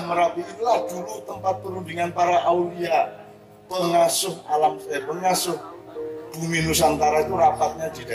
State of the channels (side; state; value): both; identical; correlation 1.00